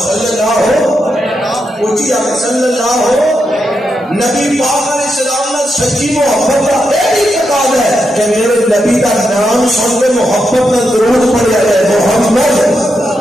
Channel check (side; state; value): both; normal; correlation 0.84